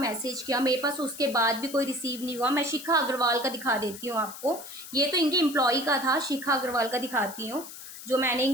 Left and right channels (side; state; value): left; noise; hiss, 13 dB below the sound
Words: किया, मेरे पास उसके बाद भी कोई रिसीव नहीं हुआ। मैं शिखा अग्रवाल का दिखा देती हूँ आपको, ये तो इनके एम्प्लॉय का था, शिखा अग्रवाल का दिखाती हूँ, जो मैंने